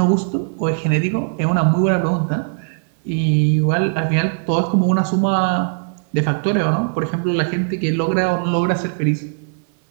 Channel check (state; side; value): silent; left; 61 dB below the other